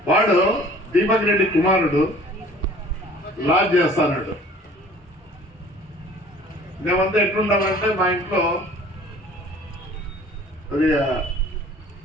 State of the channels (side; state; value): both; normal; correlation 0.50